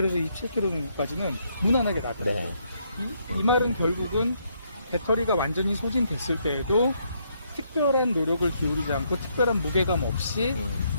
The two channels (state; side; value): inverted; both; correlation -0.73